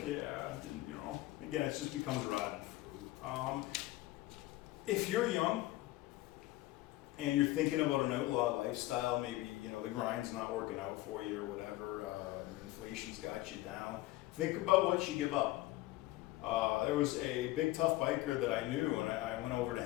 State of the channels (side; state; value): right; quieter; 17.7 dB